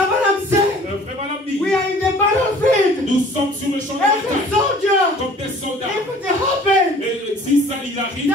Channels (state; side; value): normal; both; correlation 0.50